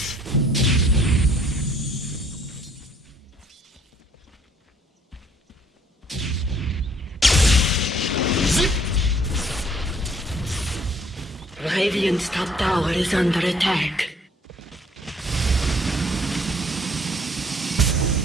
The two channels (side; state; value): both; normal; correlation 0.60